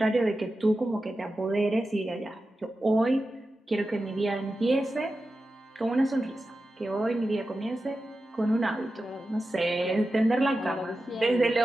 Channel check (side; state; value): both; normal; correlation 0.92